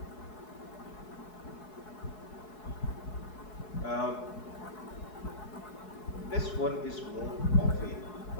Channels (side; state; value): right; late; 4.7 ms